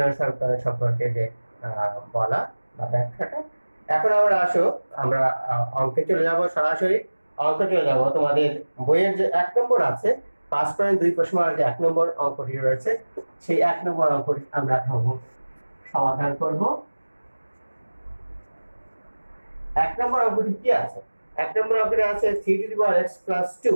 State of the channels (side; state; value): both; inverted; correlation -1.00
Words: সমীকরণ সম্পর্কে যে বলা বা ব্যাখ্যাটা। এখন আমরা অঙ্কে চলে যাব, সরাসরি অঙ্কে চলে যাব। তোমাদের বইয়ের যে 1 নম্বর আছে 5.2 প্রশ্নের যে 1 নম্বর অঙ্কটি রয়েছে, সেই 1 নম্বর অঙ্কটি আমরা সমাধান করব। 1 নম্বর অঙ্কটি কি আছে? 1 নম্বর অঙ্কটি আছে 3x +